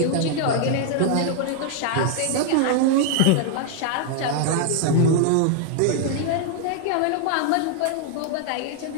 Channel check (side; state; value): both; different; correlation 0.00